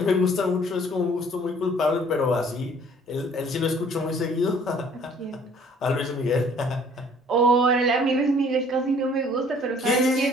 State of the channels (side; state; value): both; normal; correlation 0.56